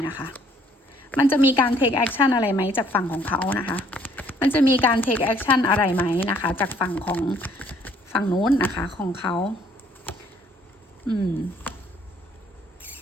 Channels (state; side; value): normal; both; correlation 0.62